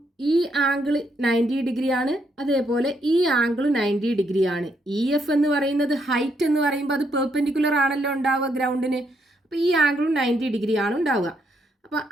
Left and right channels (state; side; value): normal; both; correlation 0.75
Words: ഈ ആംഗിൾ 90 ഡിഗ്രിയാണ്, അതേപോലെ ഈ ആംഗിൾ 90 ഡിഗ്രിയാണ്. EF എന്ന് പറയുന്നത് ഹൈറ്റ് എന്ന് പറയുമ്പോൾ അത് പെർപെൻഡിക്കുലർ ആണല്ലോ ഉണ്ടാവുക ഗ്രൗണ്ടിന്. അപ്പോൾ ഈ ആംഗിളും 90 ഡിഗ്രിയാണ് ഉണ്ടാവുക. അപ്പോൾ